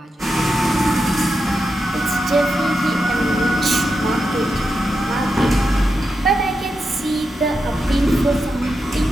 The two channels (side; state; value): both; normal; correlation 0.87